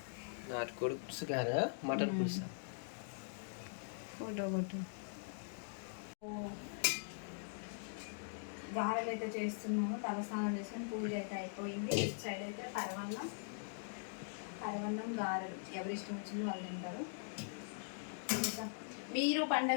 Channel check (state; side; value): silent; right; digital silence